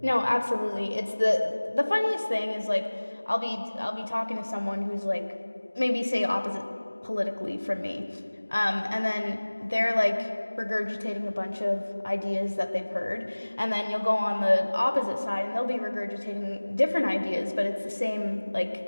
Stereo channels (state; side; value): inverted; both; correlation -1.00